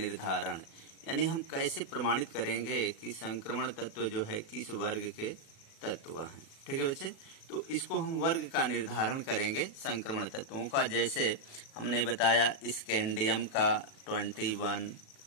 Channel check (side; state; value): right; late; 37 ms